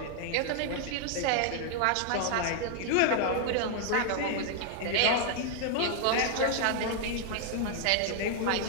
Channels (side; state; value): both; different; correlation 0.00